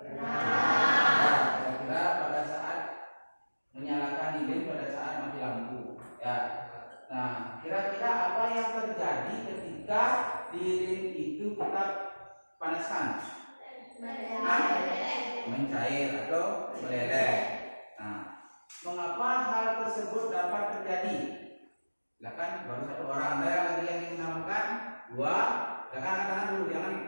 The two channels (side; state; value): both; inverted; correlation -1.00